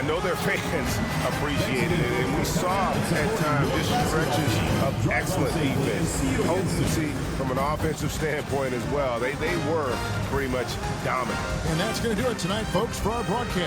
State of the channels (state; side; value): identical; both; correlation 1.00